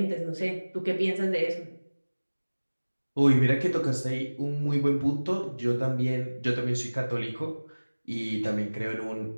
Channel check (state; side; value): inverted; both; correlation -1.00